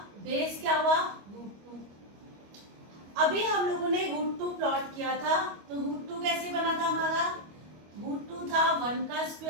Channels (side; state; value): left; late; 25 ms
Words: बेस क्या हुआ, रूट 2। अभी हम लोगों ने रूट 2 प्लॉट किया था, तो रूट 2 कैसे बना था हमारा, रूट 2 था 1 का